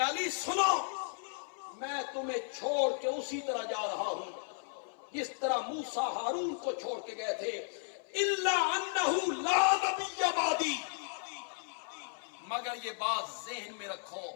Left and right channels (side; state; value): right; silent; 55 dB below the other